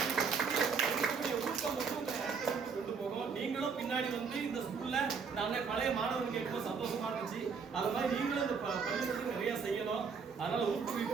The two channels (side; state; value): left; quieter; 5.6 dB